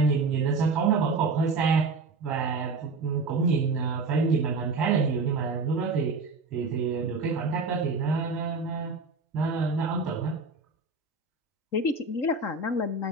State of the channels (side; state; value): left; quieter; 3.9 dB